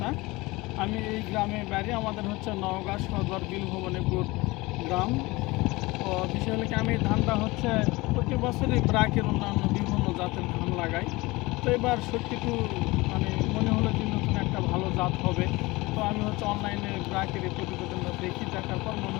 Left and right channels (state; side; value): quieter; right; 22.0 dB